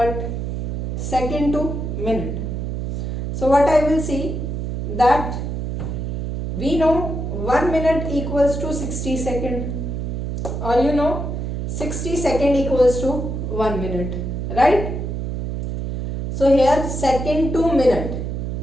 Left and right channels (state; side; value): noise; right; hum, 3 dB below the sound